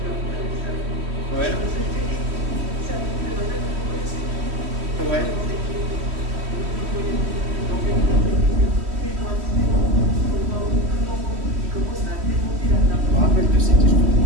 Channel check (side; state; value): left; late; 3.1 ms